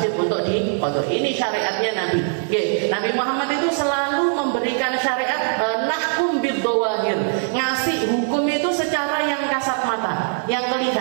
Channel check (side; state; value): left; silent; 63 dB below the other